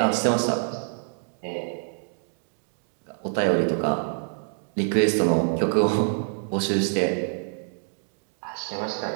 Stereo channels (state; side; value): silent; left; 61 dB below the other